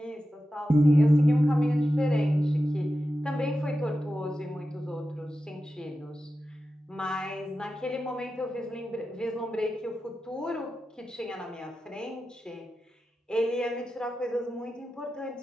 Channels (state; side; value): normal; both; correlation 0.92